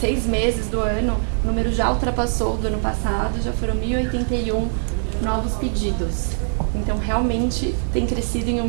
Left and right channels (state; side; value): silent; left; digital silence